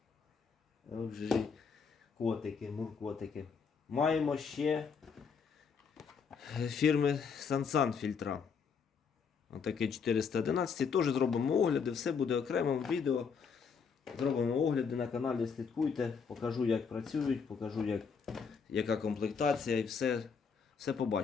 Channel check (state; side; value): quieter; right; 5.9 dB